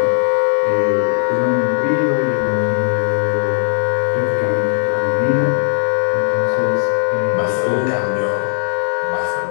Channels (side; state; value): right; silent; digital silence